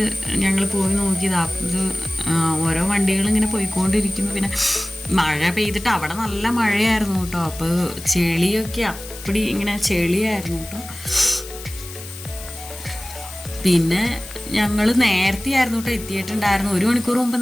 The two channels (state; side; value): noise; left; hiss, 14 dB below the sound